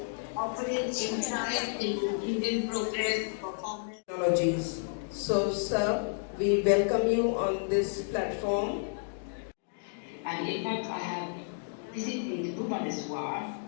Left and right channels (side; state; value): right; silent; digital silence